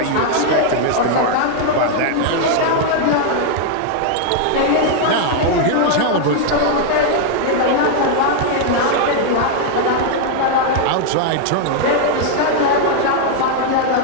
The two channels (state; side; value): different; both; correlation 0.00